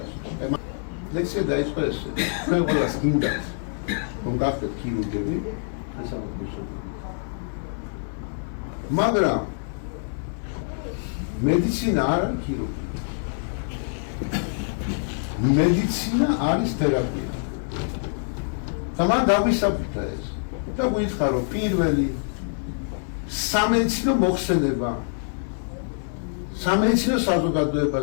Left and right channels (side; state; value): right; silent; 58 dB below the other